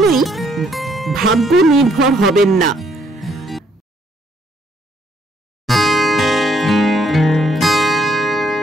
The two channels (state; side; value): normal; both; correlation 0.69